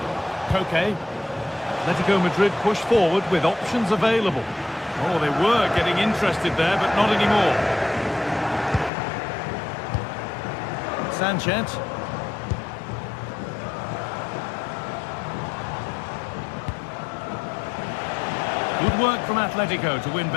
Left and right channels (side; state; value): right; drops out; at 8.9 s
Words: Koke. Atletico Madrid push forward with options available. Oh, they were getting interested there, but not anymore. Sanchez. Good work from Atletico to win